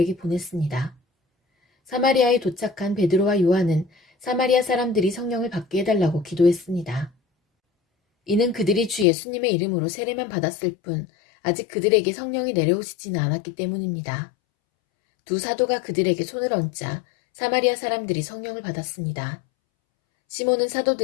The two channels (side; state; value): right; drops out; at 9.1 s